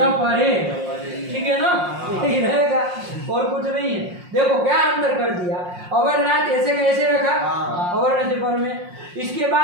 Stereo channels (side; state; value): left; late; 5.6 ms